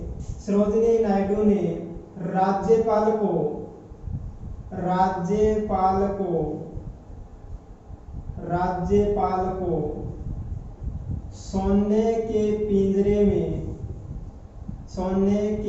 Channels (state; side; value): identical; both; correlation 1.00